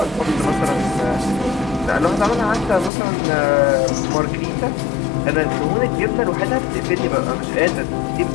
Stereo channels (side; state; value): right; drops out; at 2.9 s